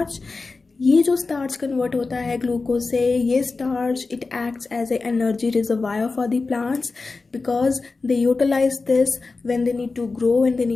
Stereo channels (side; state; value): right; quieter; 3.9 dB